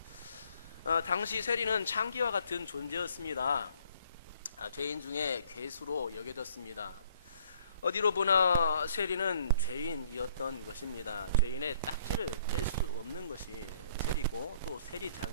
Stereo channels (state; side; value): inverted; both; correlation -0.62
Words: 당시 세리는 창기와 같은 존재였습니다. 죄인 중에 괴수로 여겨졌습니다. 어디로 보나 세리는 죄인이었던 것입니다. 죄인의 딱지를 뗄 수 없는 것이 세리고 또